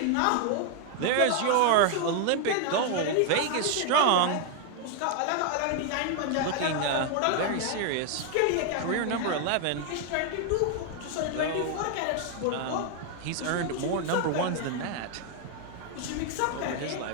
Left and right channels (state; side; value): different; both; correlation 0.00